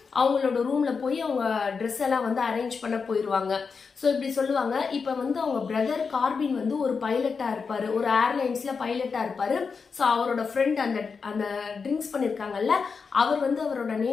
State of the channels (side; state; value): right; quieter; 5.3 dB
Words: அவங்களோட ரூம்ல போய் அவங்க ட்ரெஸ் எல்லாம் வந்து அரேஞ்ச் பண்ண போயிடுவாங்க. ஸோ இப்படி சொல்லுவாங்க. இப்போ வந்து அவங்க பிரதர் கார்பின் வந்து ஒரு பைலட்டா இருப்பாரு, ஒரு ஏர்லைன்ஸ்ல பைலட்டா இருப்பாரு. ஸோ அவரோட ஃப்ரெண்ட் அந்த ட்ரிங்க்ஸ் பண்ணிருக்காங்கல்ல, அவர் வந்து அவரோட